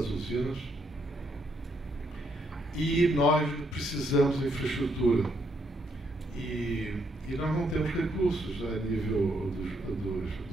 usinas e nós precisamos de infraestrutura. E nós não temos recursos a nível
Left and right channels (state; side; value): normal; both; correlation 0.75